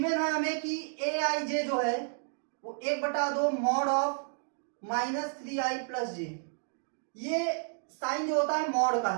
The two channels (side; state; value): left; silent; digital silence